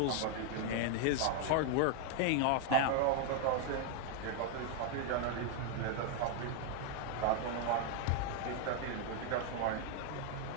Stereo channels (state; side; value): different; both; correlation 0.00